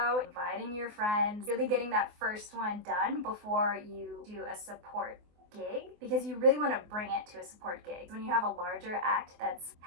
inviting your friends, really getting that first one done before you do a support gig, because you really want to bring it to a support gig. When you have a larger act that's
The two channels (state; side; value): late; left; 24 ms